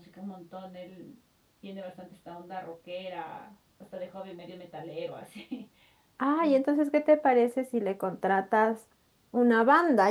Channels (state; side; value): identical; both; correlation 1.00